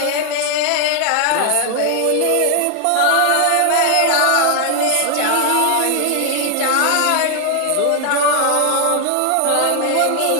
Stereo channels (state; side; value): different; both; correlation 0.00